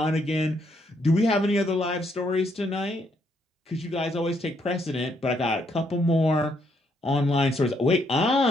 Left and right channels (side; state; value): both; normal; correlation 0.73